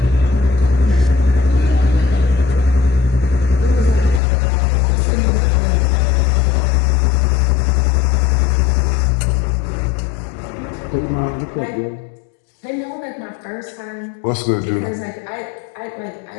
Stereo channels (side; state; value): right; drops out; at 4.2 s